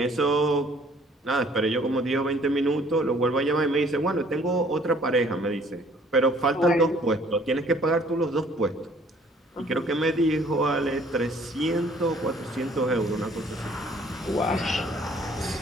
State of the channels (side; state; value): both; normal; correlation 0.58